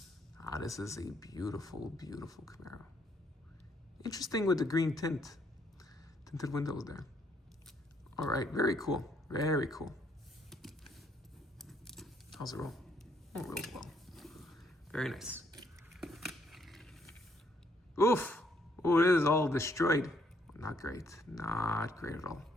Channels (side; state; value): both; normal; correlation 0.70